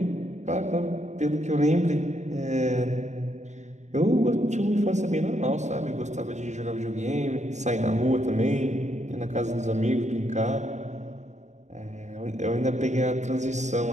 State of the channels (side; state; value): left; late; 0.34 ms